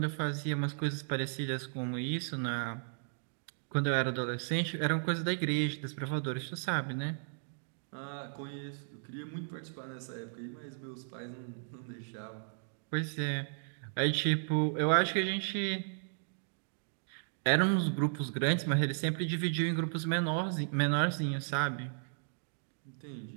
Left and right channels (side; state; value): left; silent; digital silence